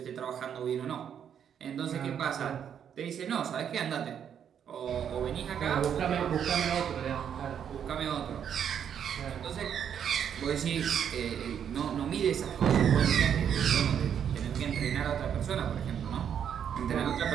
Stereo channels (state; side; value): quieter; left; 8.5 dB